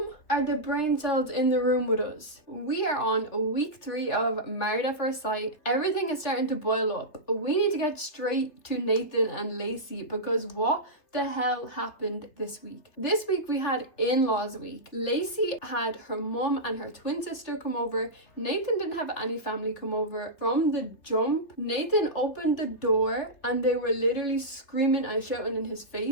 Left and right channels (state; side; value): late; right; 3.3 ms